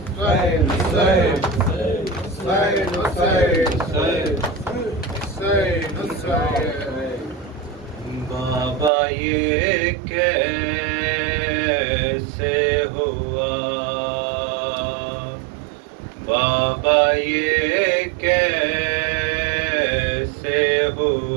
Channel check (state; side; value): drops out; left; at 8.9 s